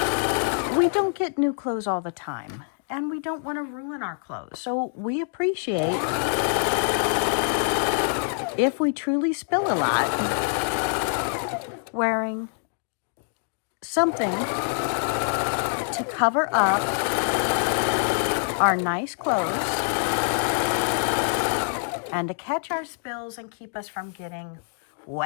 don't get new clothes all the time, and we don't want to ruin our clothes. So we appreciate if we truly spill a lot, wearing something to cover up our nice clothes and to catch our spills and keep us from getting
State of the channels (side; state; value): right; silent; digital silence